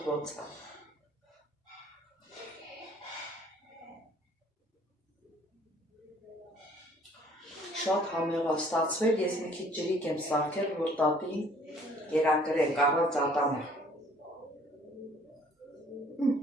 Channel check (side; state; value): both; normal; correlation 0.57